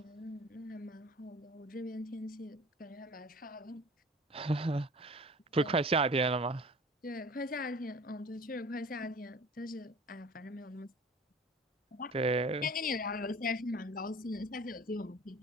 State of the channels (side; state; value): both; normal; correlation 0.44